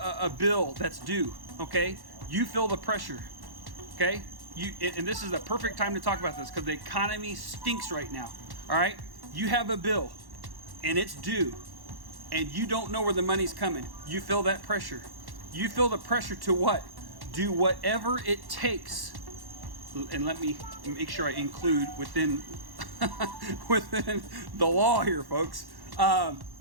bill that's due, okay, you feel the pressure. Okay, and this is the perfect time to talk about this because the economy stinks right now. All right, you have a bill and it's due, and you don't know where the money's coming. You feel that pressure. You feel the pressure to what? Do whatever it takes. And let me make sure I include within the law here, folks.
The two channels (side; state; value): left; late; 1.1 ms